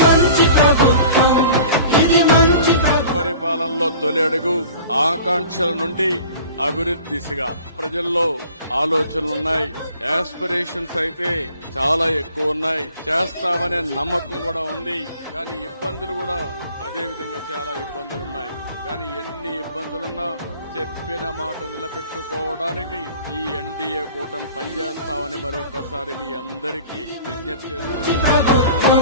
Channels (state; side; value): inverted; both; correlation -0.45